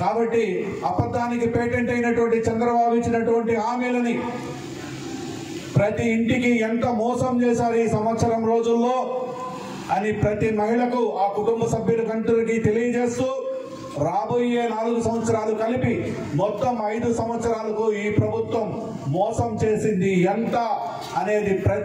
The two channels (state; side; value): identical; both; correlation 1.00